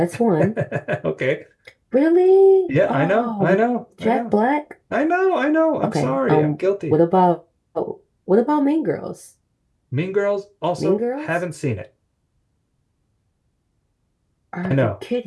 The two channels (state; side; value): identical; both; correlation 1.00